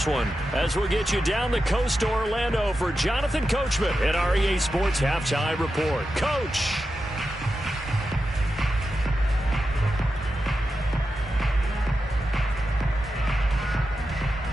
one. As we'll get you down the coast to Orlando for Jonathan Coachman at our EA Sports Halftime Report. Coach.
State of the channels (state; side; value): normal; both; correlation 0.90